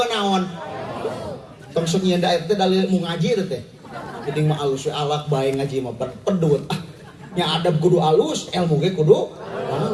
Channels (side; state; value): both; identical; correlation 1.00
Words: naon. Tong sok nyieun da teh dalil ilmu ngaji teh. Penting mah alus we alak bae ngaji mah pedut. Nya adab kudu alus, ilmu ge kudu